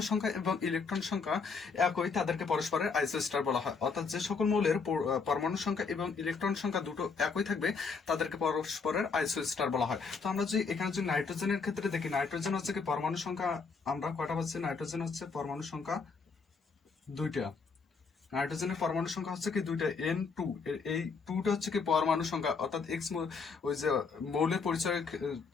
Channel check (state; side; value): quieter; right; 5.0 dB